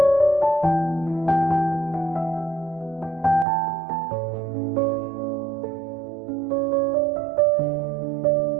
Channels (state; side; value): drops out; left; at 3.5 s